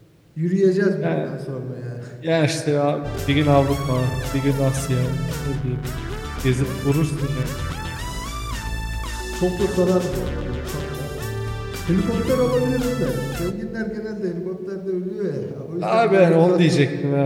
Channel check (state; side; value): identical; both; correlation 1.00